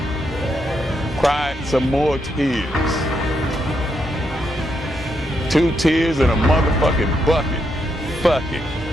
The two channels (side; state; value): both; normal; correlation 0.80